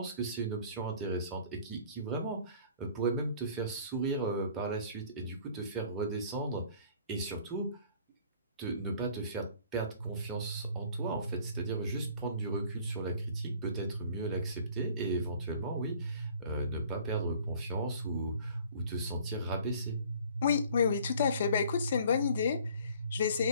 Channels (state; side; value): inverted; both; correlation -0.52